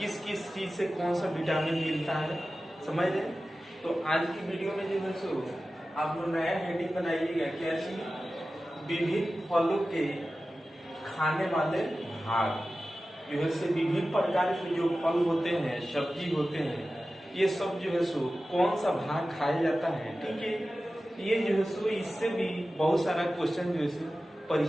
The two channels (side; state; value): both; normal; correlation 0.95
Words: किस चीज से कौन सा विटामिन मिलता है, समझ रहे। तो आज की वीडियो में जो है सो आप लोग नया हेडिंग बनाइएगा, क्या चीज, विभिन्न फलों के खाने वाले भाग। जो है से विभिन्न प्रकार के जो फल होते हैं, सब्जी होते हैं, ये सब जो है सो कौन सा भाग खाया जाता है, ठीक है। ये जो है सो इससे भी बहुत सारा क्वेश्चन जो है सो